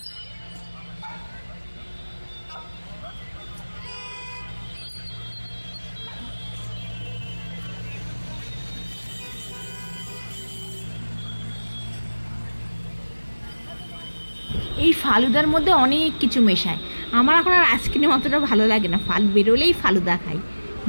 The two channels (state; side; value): inverted; both; correlation -1.00